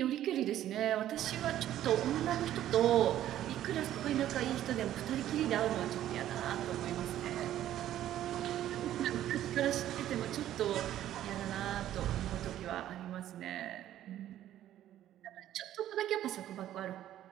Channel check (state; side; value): quieter; left; 12.3 dB